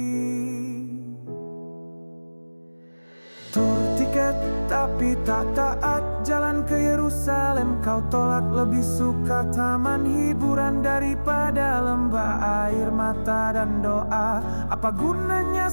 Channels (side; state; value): both; inverted; correlation -1.00